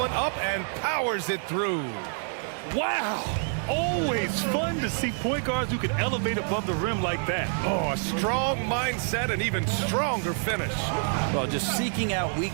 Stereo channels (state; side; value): silent; left; 59 dB below the other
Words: up and powers it through. Wow! Always fun to see point guards who can elevate above the rim like that. Oh, a strong mindset and even stronger finish. Well, just seeking out